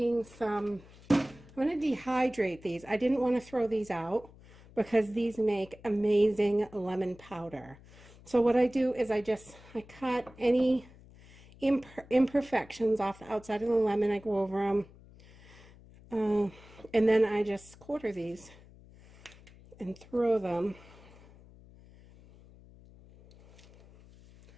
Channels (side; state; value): left; noise; hum, 23 dB below the sound